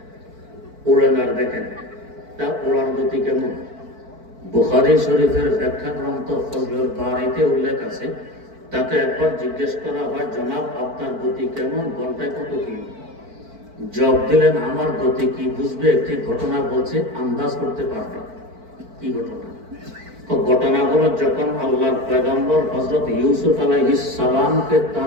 ওড়েন আর দেখেন তা ওড়ার গতি কেমন। বুখারী শরীফের ব্যাখ্যা গ্রন্থ ফজলুল বারীতে উল্লেখ আছে, তাকে একবার জিজ্ঞেস করা হয়, জনাব আপনার গতি কেমন, ঘন্টায় কত কিলো? জবাব দিলেন, আমার গতি কি বুঝবে, একটি ঘটনা বলছে, আন্দাজ করতে পারবে। কি ঘটনা? ঘটনা হলো, যখন আল্লাহর পয়গম্বর হযরত ইউসুফ আলাইহিস সালামকে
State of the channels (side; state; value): left; late; 4.5 ms